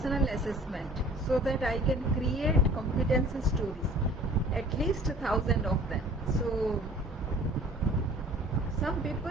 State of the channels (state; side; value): normal; both; correlation 0.48